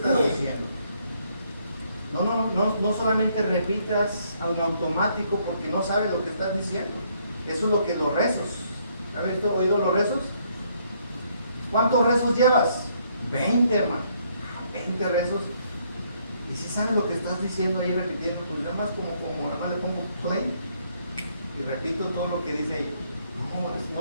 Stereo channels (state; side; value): inverted; both; correlation -0.69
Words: diciendo. No solamente repitas en automático porque no sabes lo que estás diciendo. Eso es lo que los rezos ¿Has oído los rezos? ¿Cuántos rezos llevas? 20, hermano. 20 rezos. Y si sabes lo que estás diciendo ahí repitiendo, pues nada más como nada más le pongo play y repito todo lo que dice ahí.